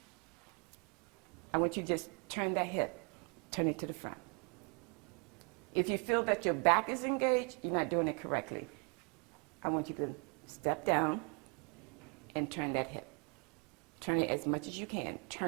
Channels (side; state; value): left; quieter; 34.6 dB